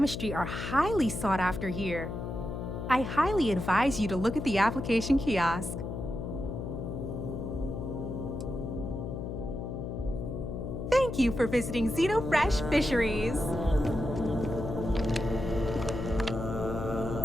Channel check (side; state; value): left; noise; hum, 5 dB below the sound